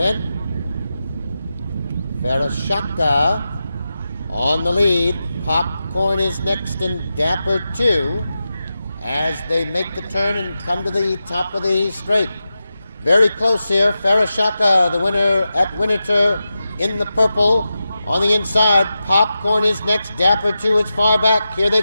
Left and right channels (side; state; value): both; inverted; correlation -0.91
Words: Farashaka on the lead. Popcorn is next and Dapper 2 as they make the turn and come to the top of the straight. Very close here. Farashaka, the winner at Winterthur in the purple. On the inside, Popcorn is next. Dapper 2 is far back. Here